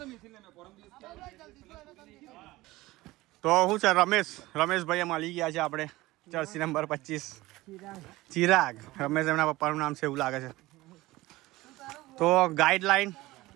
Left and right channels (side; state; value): left; quieter; 18.9 dB